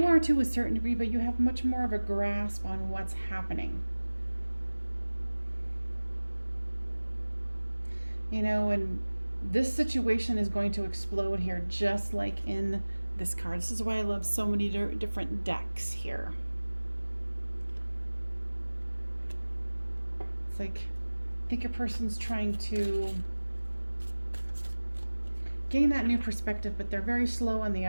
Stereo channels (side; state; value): both; inverted; correlation -1.00